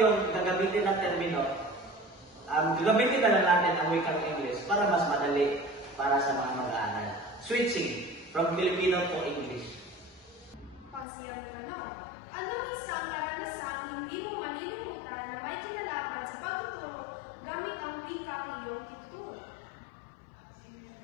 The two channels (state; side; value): drops out; right; at 11.1 s